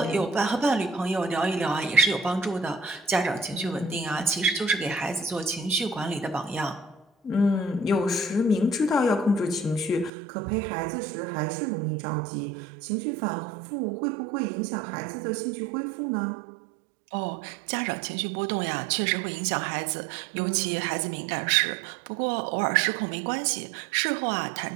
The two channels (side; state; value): left; drops out; at 10.1 s